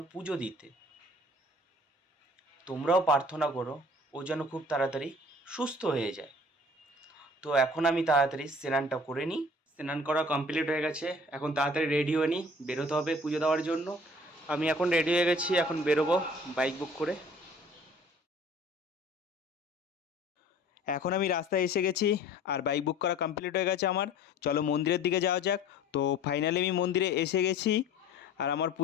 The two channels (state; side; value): normal; both; correlation 0.49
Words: পুজো দিতে। তোমরাও প্রার্থনা করো ও যেন খুব তাড়াতাড়ি সুস্থ হয়ে যায়। তো এখন আমি তাড়াতাড়ি স্নানটা করে নিই। স্নান করা কমপ্লিট হয়ে গেছে, এখন তাড়াতাড়ি রেডি হয়ে নিই, বেরোতে হবে পুজো দেওয়ার জন্য। আমি এখন রেডি হয়ে গেছি, এখন বেরোবো বাইক বুক করে। এখন আমি রাস্তায় এসে গেছি আর বাইক বুক করা কমপ্লিট হয়ে গেছে আমার। চলো মন্দিরের দিকে যাওয়া যাক। তো ফাইনালি আমি মন্দিরে এসে গেছি আর আমার